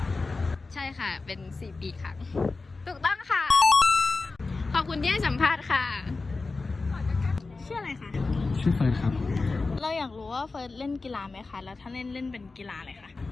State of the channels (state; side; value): quieter; right; 3.8 dB